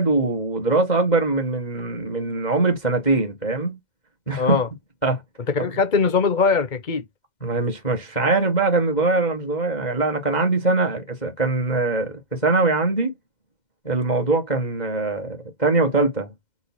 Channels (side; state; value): right; late; 2.1 ms